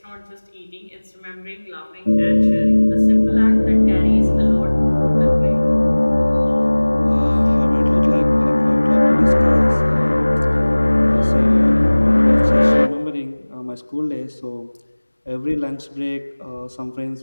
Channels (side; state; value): both; inverted; correlation -1.00